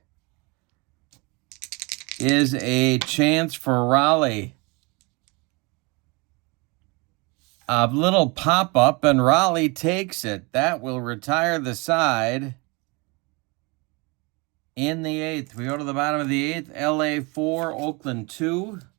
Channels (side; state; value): left; quieter; 28.2 dB